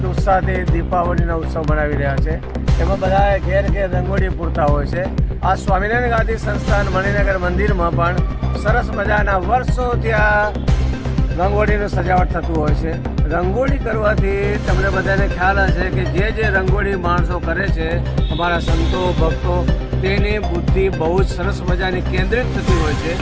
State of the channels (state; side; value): identical; both; correlation 1.00